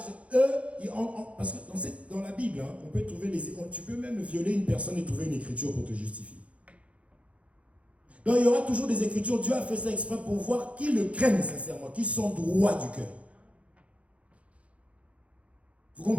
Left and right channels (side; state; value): left; late; 0.063 ms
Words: eux, parce que dans la Bible, on peut trouver tu peux même violer une personne et trouver une écriture pour te justifier. Donc il y aura toujours des écritures. Dieu a fait ça exprès pour voir qui le craignent sincèrement, qui sont droits du cœur. Vous